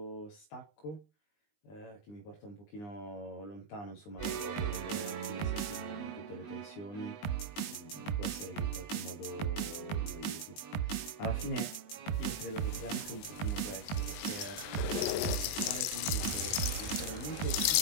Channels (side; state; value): right; late; 20 ms